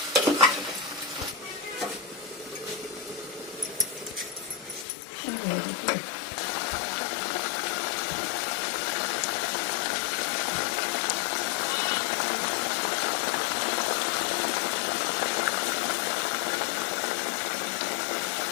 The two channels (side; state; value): right; drops out; at 4.9 s